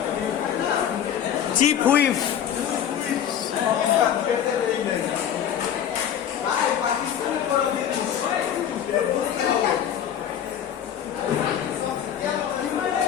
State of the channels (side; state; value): right; quieter; 9.5 dB